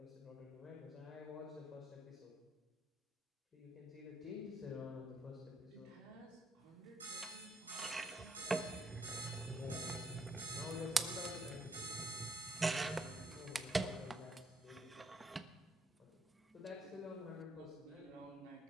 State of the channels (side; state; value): both; normal; correlation 0.73